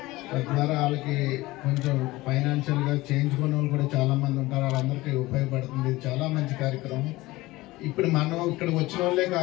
తద్వారా వాళ్ళకి కొంచెం ఫైనాన్షియల్గా చేయించుకునే వాళ్ళు కూడా చాలామంది ఉంటారు. వాళ్ళందరికీ ఉపయోగపడుతుంది. చాలా మంచి కార్యక్రమం. ఇప్పుడు మనం ఇక్కడ వచ్చిన వాళ్ళే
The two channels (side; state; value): right; quieter; 19.5 dB